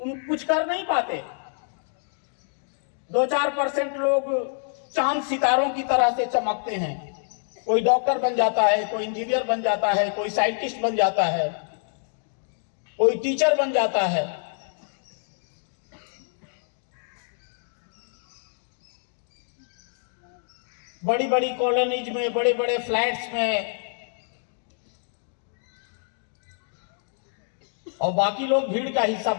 कुछ कर नहीं पाते। 2-4% लोग चांद सितारों की तरह से चमकते हैं। कोई डॉक्टर बन जाता है, कोई इंजीनियर बन जाता है, कोई साइंटिस्ट बन जाता है, कोई टीचर बन जाता है। बड़ी बड़ी कॉलोनीज में, बड़े बड़े फ्लैट्स में, और बाकी लोग भीड़ का हिस्सा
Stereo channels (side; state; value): right; silent; digital silence